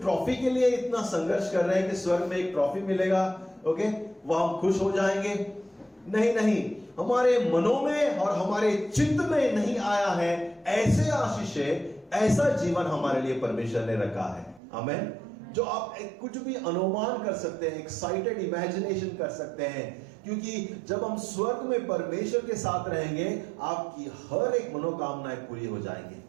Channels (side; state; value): left; drops out; at 14.6 s